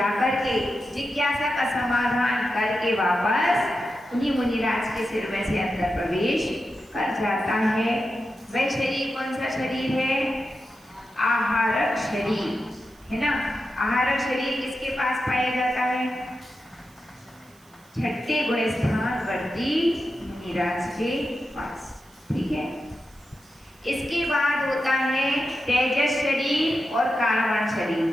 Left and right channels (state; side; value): noise; right; hiss, 29 dB below the sound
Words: के जिज्ञासा का समाधान करके वापस उन्हीं मुनिराज के सिर में से अंदर प्रवेश कर जाता है। वह शरीर कौन सा शरीर है, आहारक शरीर है ना। आहारक शरीर किसके पास पाया जाता है, छठे गुण स्थान वर्ती मुनिराज के पास, ठीक है। इसके बाद होता है तेजस शरीर और कारणवान शरीर।